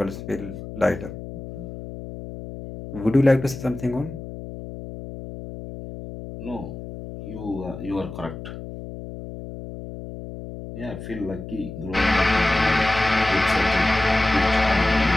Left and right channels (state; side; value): noise; left; hum, 11 dB below the sound